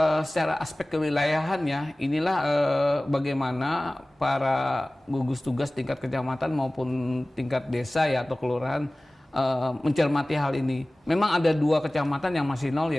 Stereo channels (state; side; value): normal; both; correlation 0.98